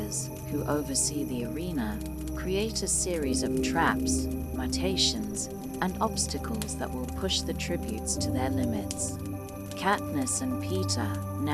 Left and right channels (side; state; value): both; identical; correlation 1.00